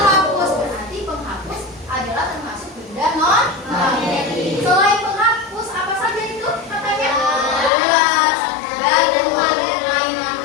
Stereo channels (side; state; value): right; drops out; at 7.7 s